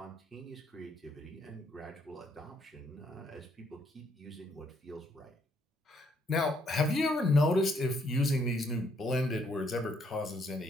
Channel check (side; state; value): both; normal; correlation 0.70